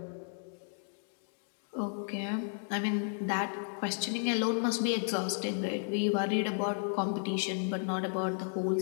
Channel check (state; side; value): silent; right; digital silence